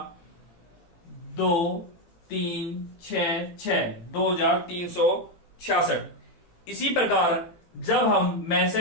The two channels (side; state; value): right; late; 17 ms